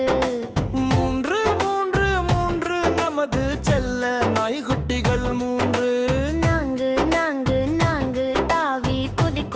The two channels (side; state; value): both; identical; correlation 1.00